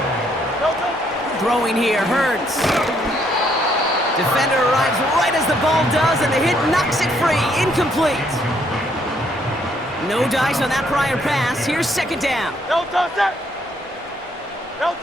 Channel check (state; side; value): normal; both; correlation 0.70